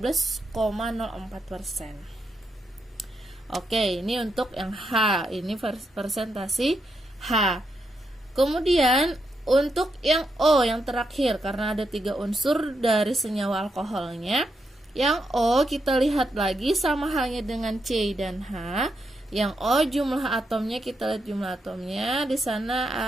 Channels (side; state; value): both; normal; correlation 0.82